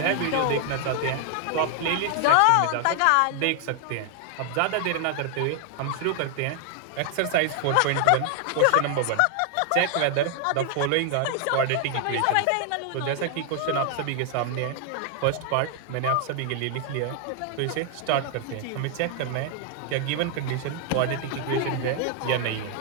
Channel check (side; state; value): both; different; correlation 0.00